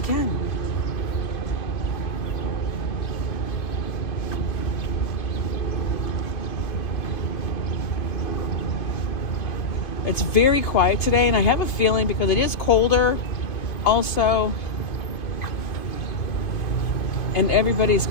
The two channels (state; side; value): late; right; 2.5 ms